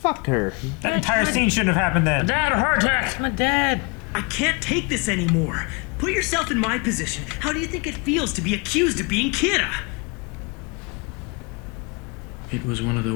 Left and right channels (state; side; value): quieter; right; 30.5 dB